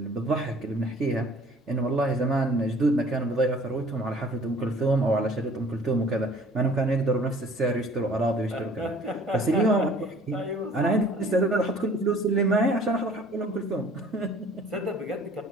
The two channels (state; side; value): normal; both; correlation 0.52